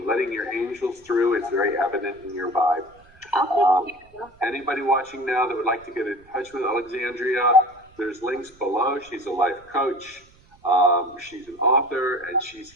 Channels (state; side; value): noise; right; rumble, 28 dB below the sound